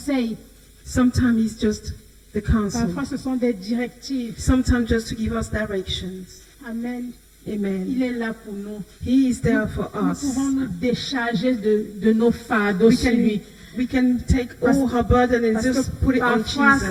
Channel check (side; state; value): both; identical; correlation 1.00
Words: Sometimes it's just the counsel. Parfois, ce sont des directives. Sometimes just to give us directions. Amen. Amen. Il est là pour nous. He is there for Nous us. pouvons nous décharger de nos fardeaux sur lui. We can take all her burden and Parce just que put it on parfois,